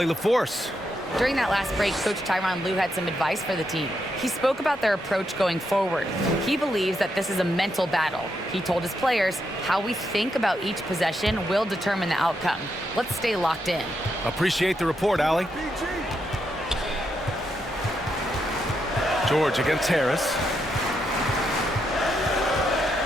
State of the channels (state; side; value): normal; both; correlation 0.81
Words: LaForce. During that last break, Coach Tyronn Lue had some advice for the team. He spoke about their approach going forward. He believes that this is a mental battle. He told his players how we think about each possession will determine the outcome. Let's stay locked in. Appreciate the report, Allie. George against Harris.